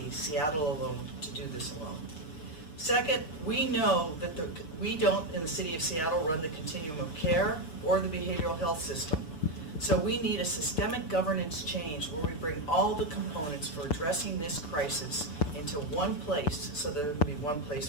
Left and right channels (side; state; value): right; late; 6.9 ms